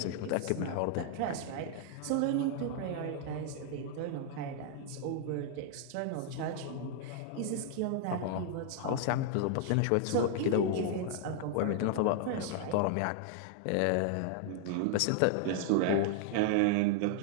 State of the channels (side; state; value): both; different; correlation 0.00